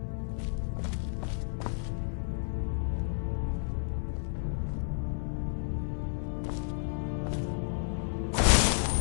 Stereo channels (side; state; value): right; silent; 57 dB below the other